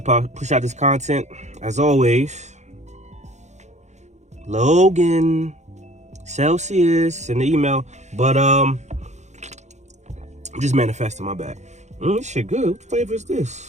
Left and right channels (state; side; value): late; left; 0.33 ms